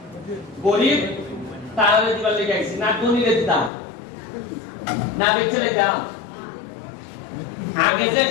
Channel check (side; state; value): right; drops out; at 3.7 s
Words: গরিব তারা দিবার লেগে আইছি, না ধনীদের দাম না দেখলে দাম। আগে যে